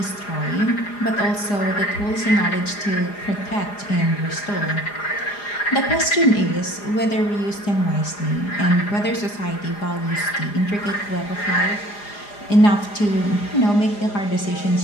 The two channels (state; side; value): late; right; 4.9 ms